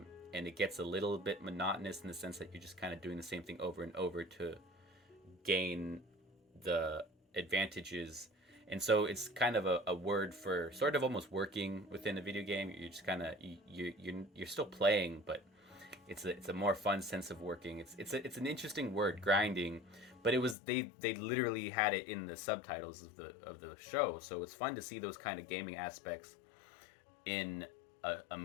and it gets a little bit monotonous in the sense that you're just kind of doing the same thing over and over to gain the advantages. And so it's kind of a word for sort of almost working within a video game. You're just kind of you're still playing, but it's a more fun sense of working. It's an interesting word, grinding, but it was they literally had it in the subtitles of the show, so it's fun to see those kind of gaming aspects in a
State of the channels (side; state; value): right; drops out; at 20.6 s